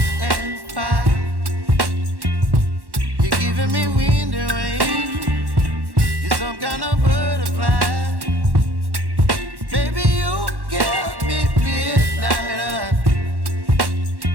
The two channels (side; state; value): left; late; 1.1 ms